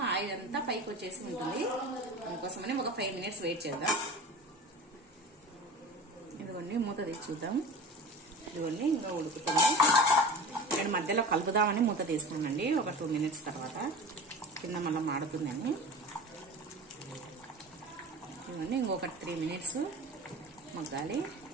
ఆయిల్ అంతా పైకి వచ్చేసి ఉంటుంది, అందుకోసమని ఒక 5 మినిట్స్ వెయిట్ చేద్దాం. ఇదిగోండి మూత తీసి చూద్దాం. ఇదిగోండి ఇంకా ఉడుకుతుంది. నేను మధ్యలో కలుపుదామని మూత తీసుకున్నానండి. ఒక 2 మినిట్స్ తర్వాత కింద మళ్ళీ మాడుతుందని. ఇదిగోండి ఇంకొక 3 మినిట్స్ మగ్గాలి.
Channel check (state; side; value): normal; both; correlation 0.34